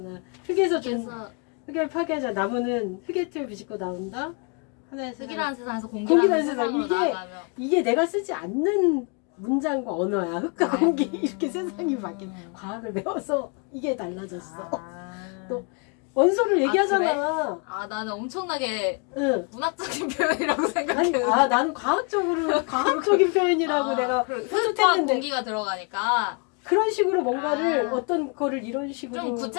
흙을 파괴하자. 나무는 흙의 틀 비집고 나온다. 하나의 흙이라는 세상에서 공기라는 세상으로 나아가며 이게 내가 쓰지 않는 문장과 언어야. 흙과 공기 이렇게 세상이 바뀐 과학을 배워서 이게 달라졌어. 또 원소를 얘기하잖아. 아, 나는 엄청나게 응. 문학적인 표현이라고 아니, 생각했는데. 나는 과학적인 표현이라고 내가 흙과 해줬는데 공기가 들어가니까 그런 식으로 뭔가를 아. 어떤 거를 이런 식으로 좀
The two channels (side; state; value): right; quieter; 34.5 dB